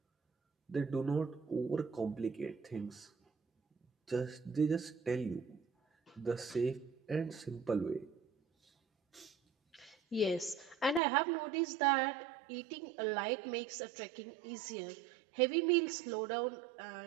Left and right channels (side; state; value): left; drops out; at 11.0 s